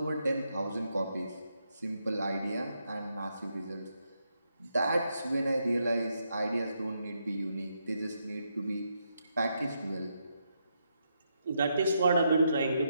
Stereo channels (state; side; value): inverted; both; correlation -0.80